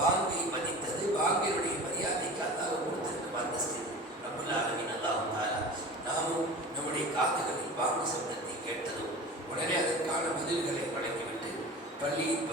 மதித்தது, பாங்கினுடைய மரியாதைக்கு அல்லாஹ் கொடுத்திருக்கும் அந்தஸ்து. ரப்புல் ஆலமீன் அல்லாஹ் தஆலா நாமும் நம்முடைய காதுகளில் பாங்கு சப்தத்தை கேட்டதும் உடனே அதற்கான பதில்களை வழங்கிவிட்டு பள்ளியின்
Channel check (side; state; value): both; normal; correlation 0.35